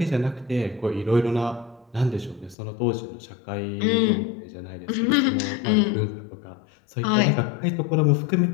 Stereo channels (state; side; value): drops out; right; at 2.6 s